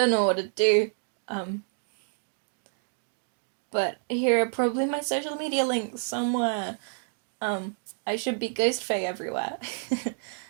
know what to do. But here are probably my social media links somewhere. I should be Ghost Fae everywhere.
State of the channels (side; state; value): left; silent; digital silence